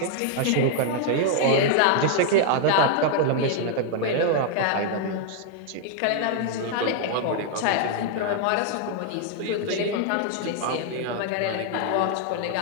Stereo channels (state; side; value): different; both; correlation 0.00